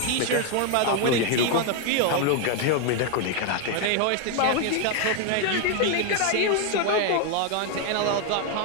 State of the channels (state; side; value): different; both; correlation 0.01